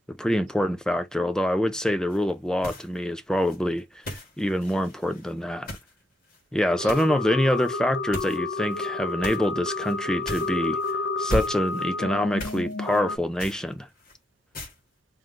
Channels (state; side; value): normal; both; correlation 0.81